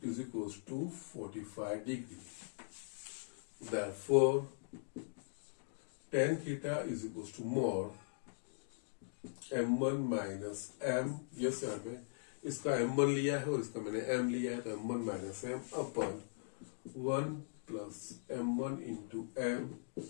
is equals to 45 degree. Therefore, tan theta is equals to more m1 minus m. Yes, यहाँ पे इसका m1 लिया है और इसका मैंने m लिया है, तो m1 minus m upon 1 plus m1 into m.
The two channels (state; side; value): silent; right; digital silence